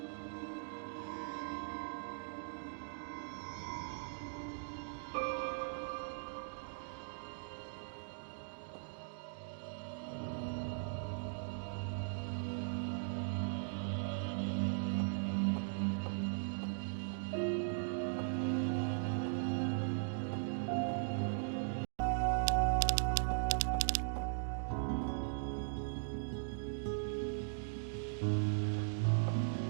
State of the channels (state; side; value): silent; left; digital silence